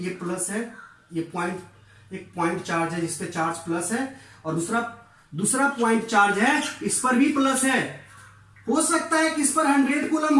प्लस है, ये पॉइंट, एक पॉइंट चार्ज है जिसपे चार्ज प्लस है, और दूसरा पॉइंट चार्ज है इस पर भी प्लस है। हो सकता है कि इस पर 100 कूलम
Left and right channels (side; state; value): both; identical; correlation 1.00